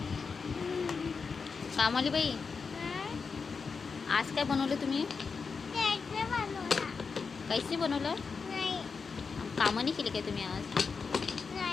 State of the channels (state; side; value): quieter; right; 5.2 dB